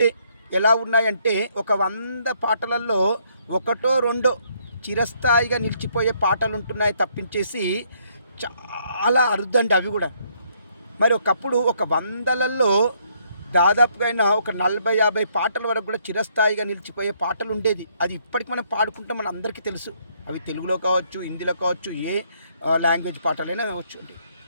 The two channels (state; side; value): inverted; both; correlation -0.69